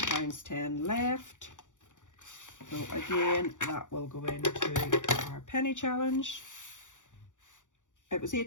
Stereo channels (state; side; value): late; right; 0.86 ms